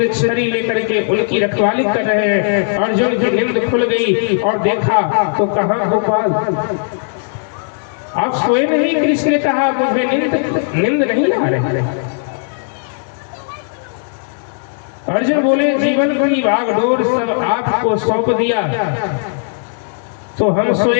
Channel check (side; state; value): right; silent; digital silence